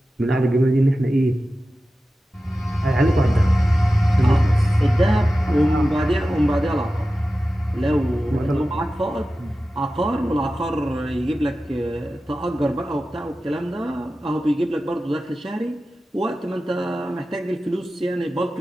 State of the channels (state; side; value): normal; both; correlation 0.94